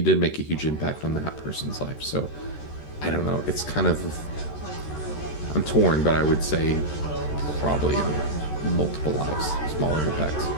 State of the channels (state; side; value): late; right; 13 ms